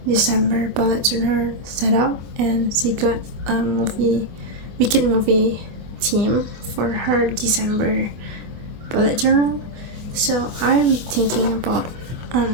December bullet journal set up, and she got a wicked movie theme for her December bullet journal. So I'm thinking about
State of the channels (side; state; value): left; late; 24 ms